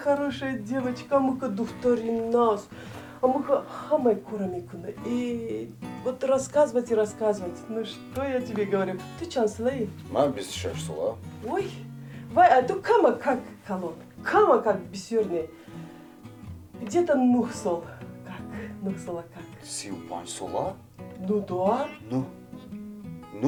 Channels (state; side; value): identical; both; correlation 1.00